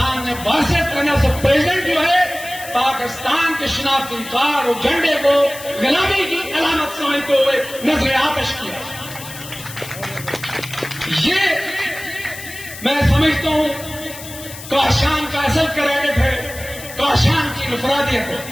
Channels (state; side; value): noise; left; hiss, 13 dB below the sound